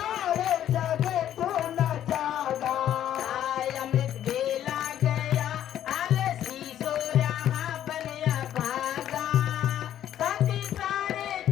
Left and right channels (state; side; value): quieter; right; 11.1 dB